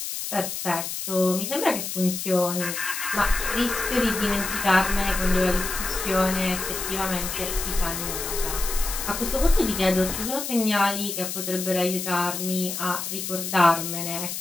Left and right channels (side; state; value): left; noise; hiss, 5 dB below the sound